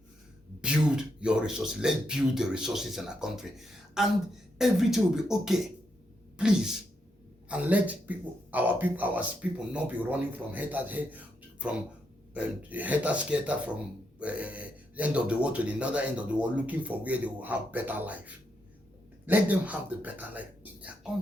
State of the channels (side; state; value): both; normal; correlation 0.81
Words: build your resources. Let's build the resources in our country, and everything will be okay. Please, and let our people not be running from hater from end of the world to the other end of the world, looking for where they will have better life. Let them have the better life in their